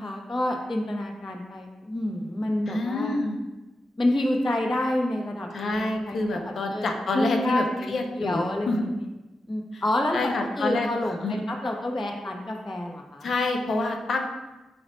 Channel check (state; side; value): normal; both; correlation 0.88